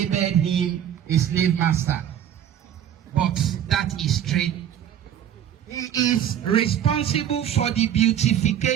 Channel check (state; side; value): quieter; left; 10.1 dB